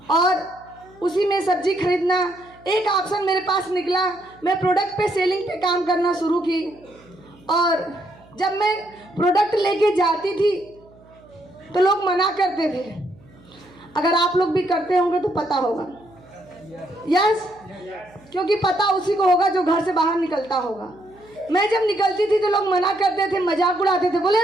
और उसी में सब्जी खरीदना एक ऑप्शन मेरे पास निकला। मैं प्रोडक्ट पे सेलिंग पे काम करना शुरू की, और जब मैं प्रोडक्ट लेके जाती थी तो लोग मना करते थे। अगर आप लोग भी करते होंगे तो पता होगा। यस, क्योंकि पता उसी को होगा जो घर से बाहर निकलता होगा। मैं जब निकलती थी तो लोग मना करते थे, मजाक उड़ाते थे, बोले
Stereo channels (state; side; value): noise; right; hum, 26 dB below the sound